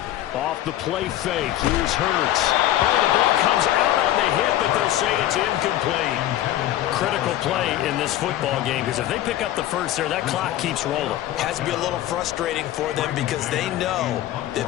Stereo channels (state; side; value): quieter; right; 13.5 dB